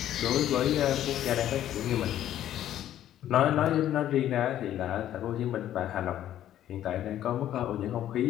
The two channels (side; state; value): right; quieter; 11.9 dB